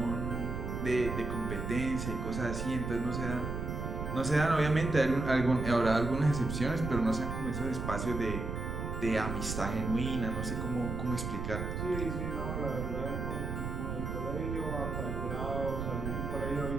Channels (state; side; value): noise; right; rumble, 4 dB below the sound